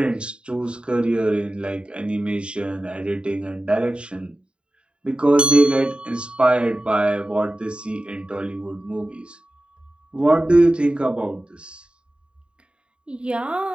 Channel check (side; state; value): left; late; 0.054 ms